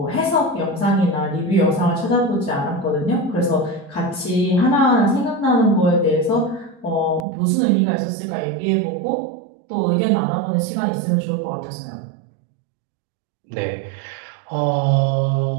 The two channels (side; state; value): left; drops out; at 7.2 s